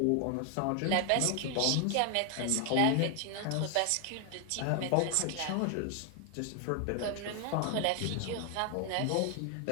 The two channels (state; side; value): different; both; correlation 0.00